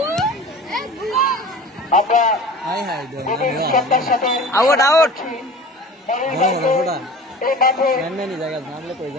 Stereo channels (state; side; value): normal; both; correlation 0.39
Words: আমরা সত্তার সাথে আউট আউট এই মাঠে